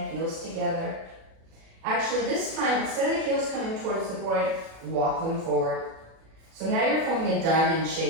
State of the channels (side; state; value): left; late; 37 ms